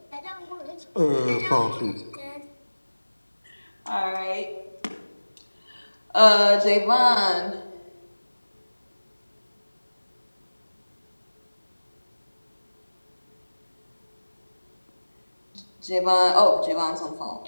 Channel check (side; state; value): both; inverted; correlation -1.00